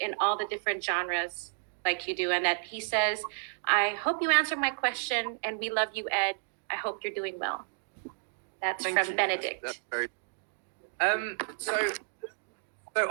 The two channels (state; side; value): silent; left; digital silence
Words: all the different genres like you do? And that he says, I hope you answer my question, and we love you, Ed. I hope you're doing well. That's Thank from you. Benedict. That's very. So